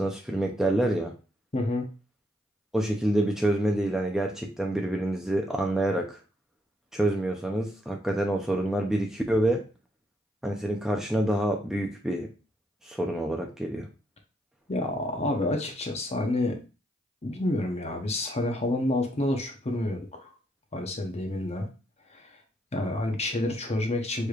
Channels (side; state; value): both; normal; correlation 0.75